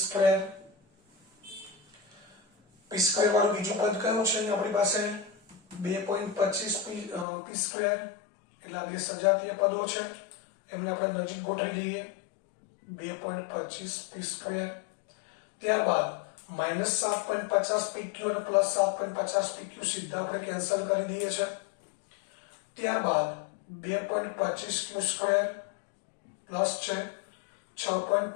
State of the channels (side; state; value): right; drops out; at 7.2 s